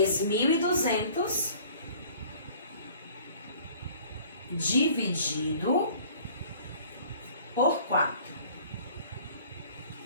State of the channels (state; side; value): inverted; both; correlation -0.50